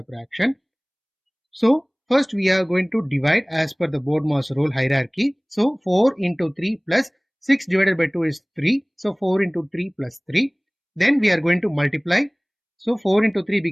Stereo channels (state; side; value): identical; both; correlation 1.00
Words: So first we are going to divide as per the BODMAS rule hierarchy. So 4 into 3 plus 6 divided by 2 is 3. So 4 into 3 plus 3. Then we are going to multiply. So 4 into 3